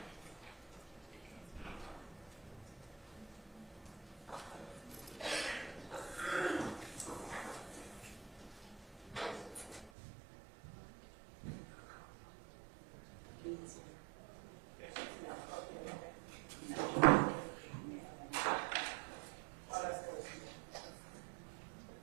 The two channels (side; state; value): left; drops out; at 9.9 s